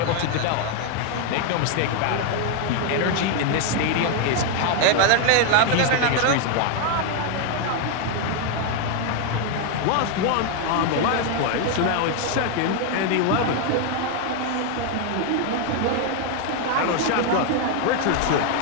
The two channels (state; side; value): different; both; correlation 0.01